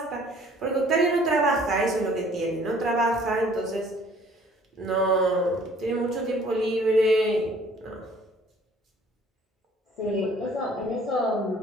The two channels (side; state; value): both; normal; correlation 0.56